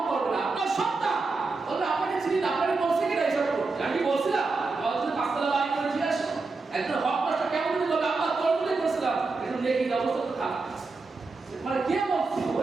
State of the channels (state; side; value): quieter; left; 3.9 dB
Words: করবে না। আপনার সন্তান বলবে আপনাকে চিনি না, আপনাকে বলছে কিনা এইসব করতে? আমি বলছিলাম আমাদের 5 তলা বাড়ি করে ফিরে আসো, একজন হক নষ্ট কেমন যদি বলবে আল্লাহ তোর বলে করেছিলাম, এখন নেকি অবস্থা তো খারাপ। মানে কে বলছে?